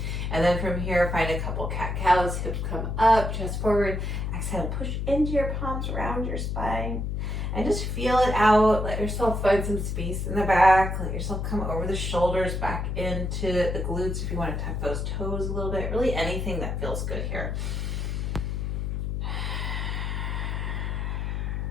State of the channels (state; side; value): noise; left; hum, 2 dB below the sound